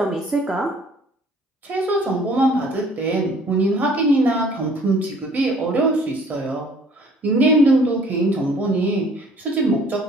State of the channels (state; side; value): normal; both; correlation 0.55